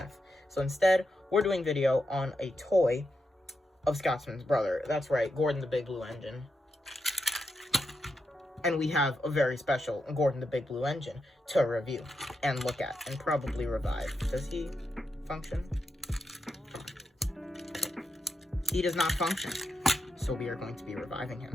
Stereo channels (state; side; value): normal; both; correlation 0.85